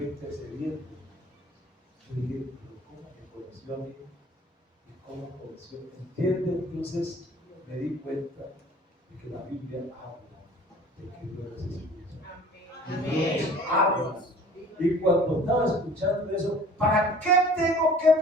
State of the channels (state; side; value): normal; both; correlation 0.48